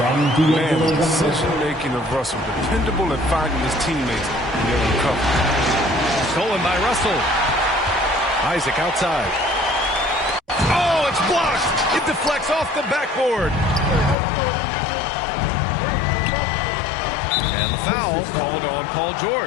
the decision-making of Russell, dependable at finding his teammates and getting them covered. Stolen by Russell. Isaac outside. Oh, it's blocked. It deflects off the backboard. And the foul called on Paul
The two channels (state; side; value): drops out; right; at 14.2 s